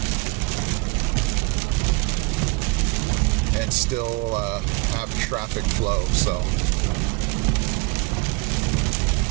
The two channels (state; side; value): quieter; left; 26.2 dB